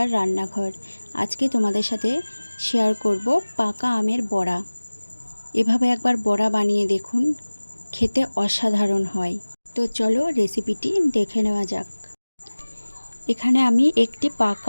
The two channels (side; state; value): both; inverted; correlation -1.00